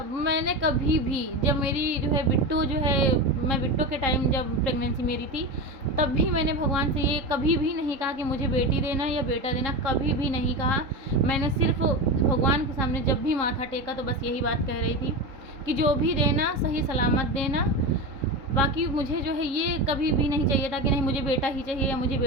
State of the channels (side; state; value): left; late; 3.8 ms